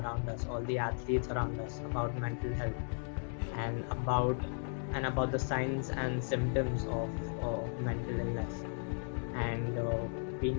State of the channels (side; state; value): right; silent; 54 dB below the other